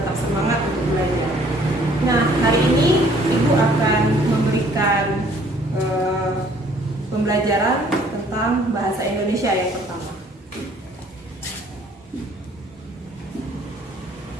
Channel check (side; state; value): both; normal; correlation 0.59